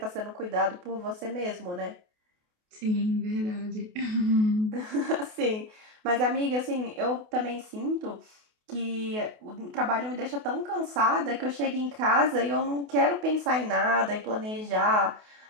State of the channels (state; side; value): late; left; 28 ms